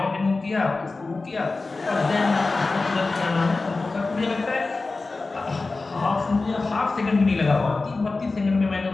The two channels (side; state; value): right; quieter; 3.6 dB